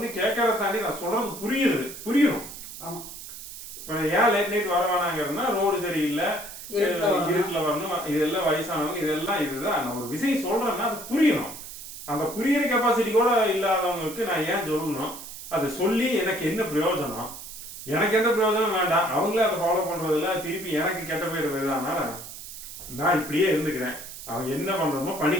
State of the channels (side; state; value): right; noise; hiss, 12 dB below the sound